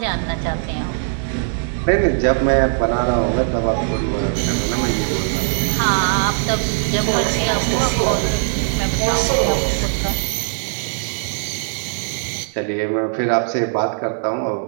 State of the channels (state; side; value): silent; left; digital silence